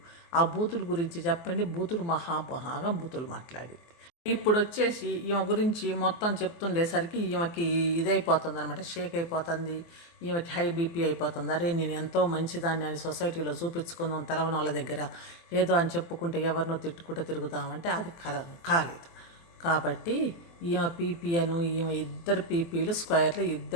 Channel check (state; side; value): late; right; 24 ms